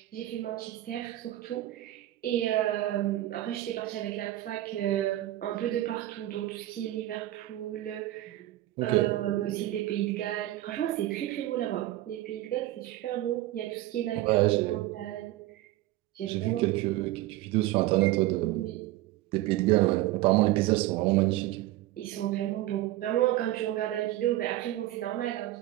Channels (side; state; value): left; quieter; 15.6 dB